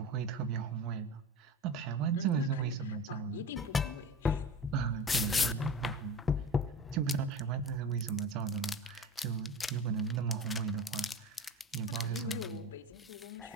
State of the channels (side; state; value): both; normal; correlation 0.31